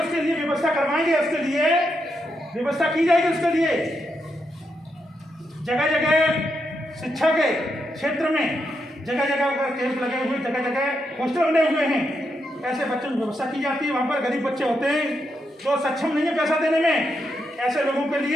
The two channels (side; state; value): both; normal; correlation 0.82